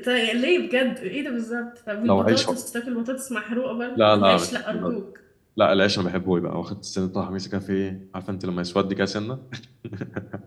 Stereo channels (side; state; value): both; identical; correlation 1.00